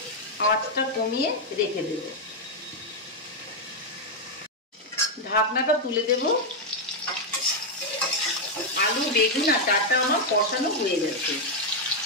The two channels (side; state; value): both; normal; correlation 0.01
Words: আঁচটা কমিয়ে রেখে দেব। ঢাকনাটা তুলে দেব। আলু, বেগুন আর ডাঁটা আমার কষানো হয়ে গেছে।